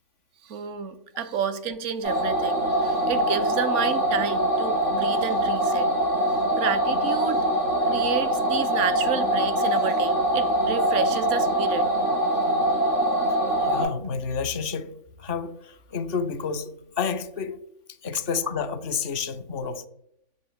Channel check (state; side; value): late; left; 3.5 ms